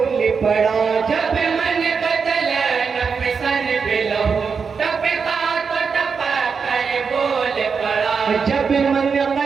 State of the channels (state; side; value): quieter; left; 5.7 dB